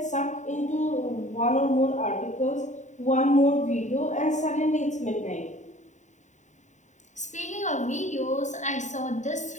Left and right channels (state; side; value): late; right; 0.35 ms